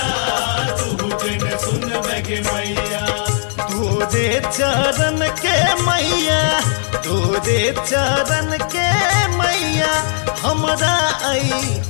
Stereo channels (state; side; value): silent; right; 68 dB below the other